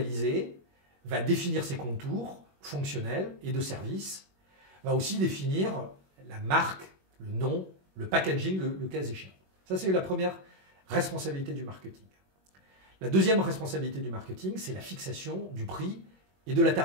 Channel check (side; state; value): left; late; 21 ms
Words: va définir ses contours fonctionnels et de service, va aussi définir la marque, le nom, le packaging, le cas échéant. Ça, c'est la première responsabilité du marketing. La deuxième responsabilité du marketing, c'est la fixation du prix et de la